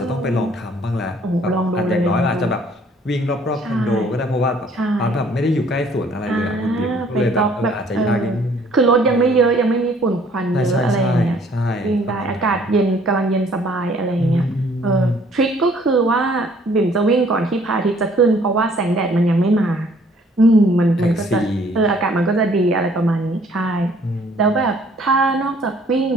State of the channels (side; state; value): both; normal; correlation 0.59